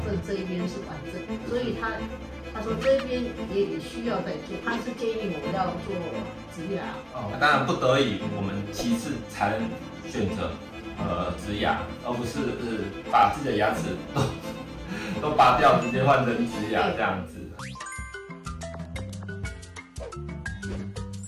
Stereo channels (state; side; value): identical; both; correlation 1.00